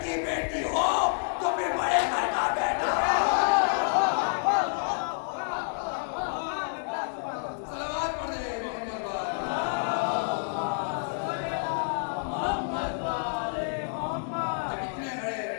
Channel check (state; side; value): silent; right; digital silence